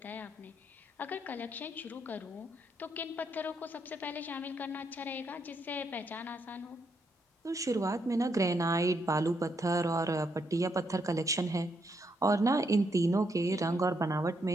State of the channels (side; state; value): both; normal; correlation 0.77